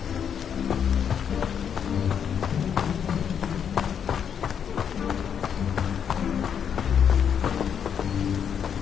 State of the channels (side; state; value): right; quieter; 8.0 dB